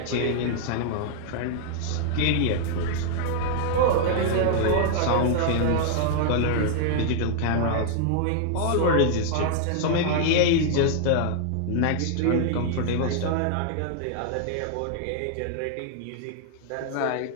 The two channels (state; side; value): different; both; correlation 0.00